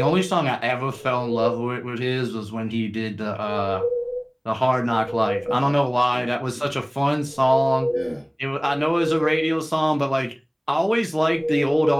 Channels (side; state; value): both; identical; correlation 1.00